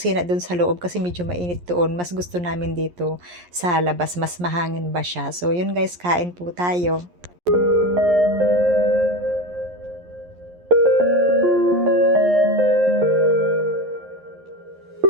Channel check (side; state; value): left; late; 11 ms